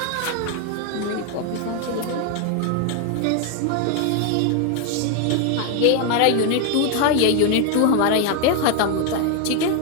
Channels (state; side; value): different; both; correlation 0.01